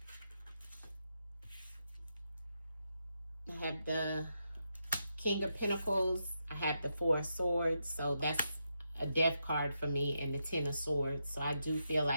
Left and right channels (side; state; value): both; inverted; correlation -0.84